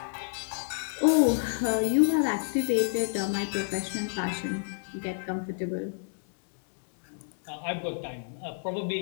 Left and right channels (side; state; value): right; silent; digital silence